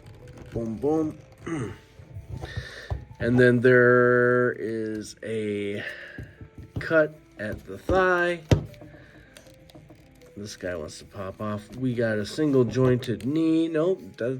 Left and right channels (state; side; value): identical; both; correlation 1.00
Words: Boom, boom. And then there is a cut at the thigh. This guy wants to pop off. We got a single jointed knee. Nope,